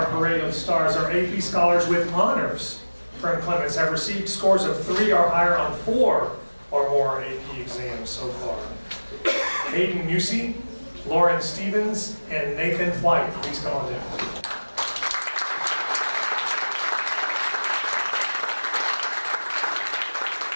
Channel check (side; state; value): both; inverted; correlation -1.00